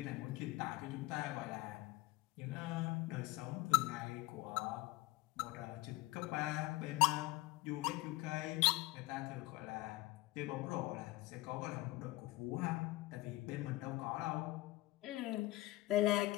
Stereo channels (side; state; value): right; quieter; 19.4 dB